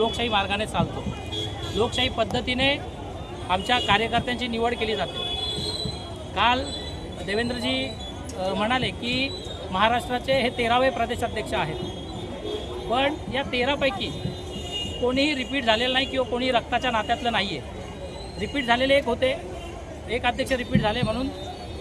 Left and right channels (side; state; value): both; identical; correlation 1.00